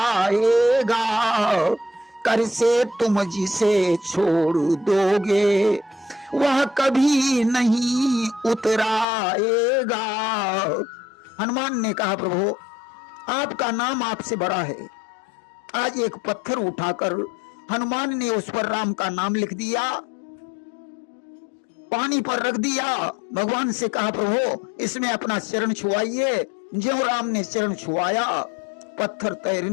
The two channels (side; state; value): right; drops out; at 9.1 s